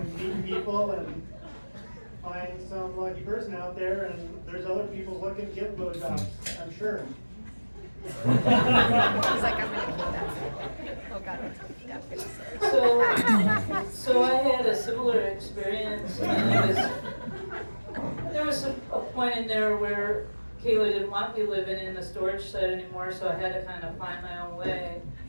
meet people and find some lucky person out there, and there's other people looking to get blowjobs, I'm sure. He's like, I'm gonna keep that. Oh God. Yeah. So I had a similar experience. And there was a point in there where Kayla didn't want me living in the storage shed anymore, so I had to kind of find my own way.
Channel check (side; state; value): both; inverted; correlation -1.00